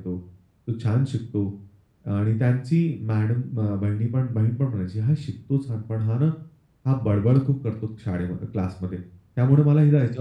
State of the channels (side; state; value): both; identical; correlation 1.00